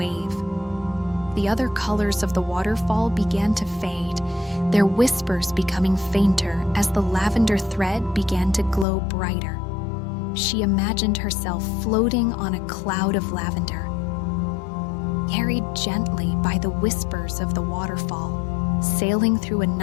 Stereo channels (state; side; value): drops out; right; at 8.8 s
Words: The other colors of the waterfall began to fade, their whispers becoming fainter as the lavender thread began to glow brighter. She imagined herself floating on a cloud of lavender, carried gently by the whispers of the waterfall, sailing through a